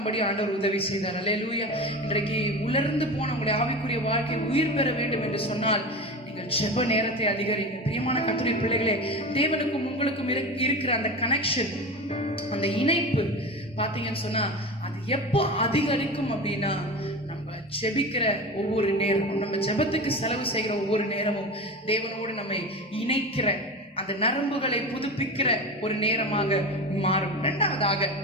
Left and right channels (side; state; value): both; normal; correlation 0.28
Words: ஆண்டவர் உதவி செய்தார். அல்லேலூயா. இன்றைக்கு உலர்ந்து போன உங்களுடைய ஆவிக்குரிய வாழ்க்கை உயிர் பெற வேண்டும் என்று சொன்னால், நீங்கள் ஜெப நேரத்தை அதிகரிங்க. பிரியமான கர்த்தருடைய பிள்ளைகளே, தேவனுக்கும் உங்களுக்கும் இருக்கிற அந்த கனெக்ஷன், அந்த இணைப்பு பாத்தீங்கன்னு சொன்னா அது எப்போ அதிகரிக்கும் அப்படின்னா, நம்ம ஜெபிக்கிற ஒவ்வொரு நேரமும், நம்ம ஜெபத்துக்கு செலவு செய்கிற ஒவ்வொரு நேரமும் தேவனோடு நம்மை இணைக்கிற அந்த நரம்புகளை புதுப்பிக்கிற ஒரு நேரமாக மாறும். இரண்டாவதாக